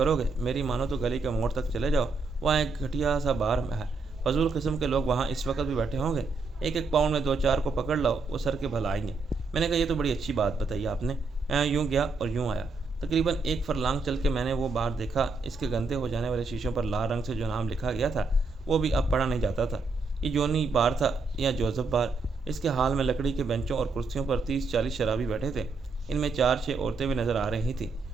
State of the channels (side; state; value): left; quieter; 3.9 dB